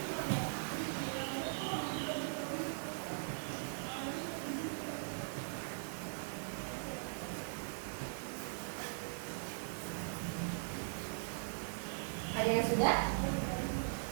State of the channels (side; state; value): left; silent; digital silence